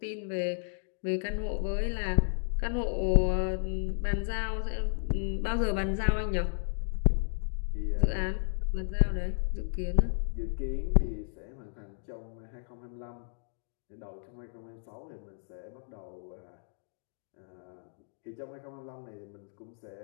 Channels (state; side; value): silent; right; digital silence